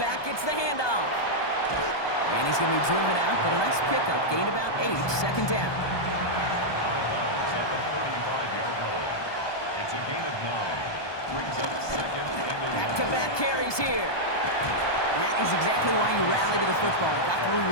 gets the handoff. And he's going to be driven out, but a nice pickup. Gained about 8, 2nd down. Out of bounds at the 35-yard line. It's a gain of 9. Brings up 2nd and 11. Back-to-back carries here. That is exactly why you rally to the football. Got through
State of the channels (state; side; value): late; right; 1.2 ms